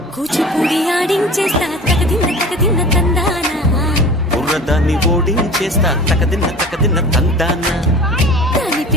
కూచిపూడి ఆడించేస్తా తగదిన్న తందానా బుర్రదాన్ని ఓడించేస్తా తగదిన్న తందానా దాని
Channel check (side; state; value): both; normal; correlation 0.40